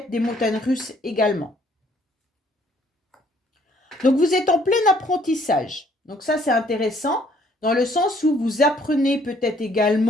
des montagnes russes également. Donc, vous êtes en plein apprentissage. Donc, ça, c'est intéressant dans le sens où vous apprenez peut-être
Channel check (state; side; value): normal; both; correlation 0.63